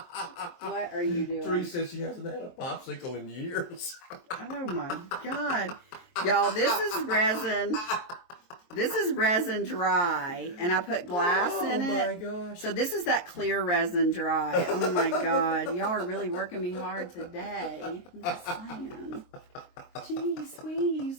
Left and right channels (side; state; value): right; late; 23 ms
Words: What are you doing? Treese says she hasn't had a popsicle in years. Oh, my God. Y'all, this is resin. This is resin dry, and I put glass in it. Oh, my gosh. So this is that clear resin dry. Oh, my God. Y'all are really working me hard today. I'm just saying. Jeez